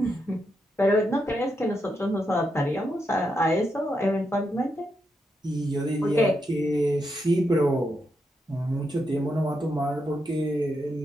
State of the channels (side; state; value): both; normal; correlation 0.83